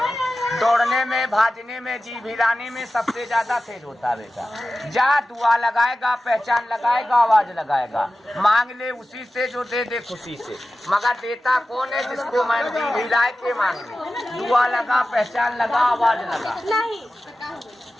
दौड़ने में, भाजने में, जी भिलाने में सबसे ज्यादा तेज होता है बेटा। जा दुआ लगाएगा, पहचान लगाएगा, आवाज लगाएगा, मांग ले उसी से जो दे दे खुशी से, मगर देता कौन है जिसको मैं जी भिलाए के मांग ले। दुआ लगा, पहचान लगा, आवाज लगा।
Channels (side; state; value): both; normal; correlation 0.95